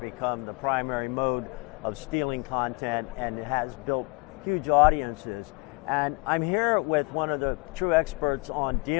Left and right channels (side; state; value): right; quieter; 29.1 dB